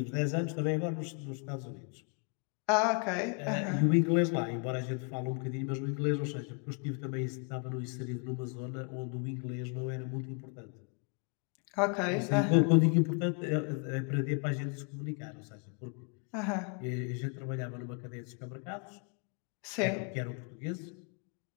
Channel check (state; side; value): quieter; right; 39.4 dB